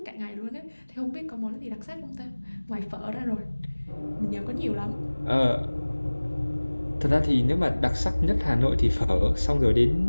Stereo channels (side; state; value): both; inverted; correlation -1.00